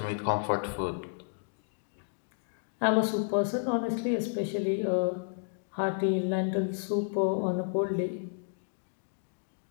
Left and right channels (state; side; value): silent; right; digital silence